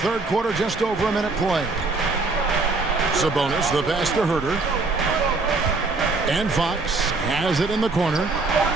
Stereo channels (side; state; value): left; quieter; 3.7 dB